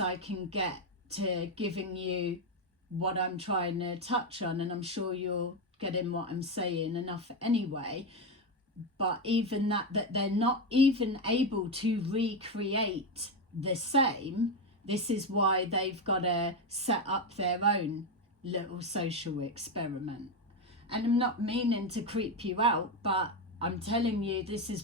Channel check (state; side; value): normal; both; correlation 0.10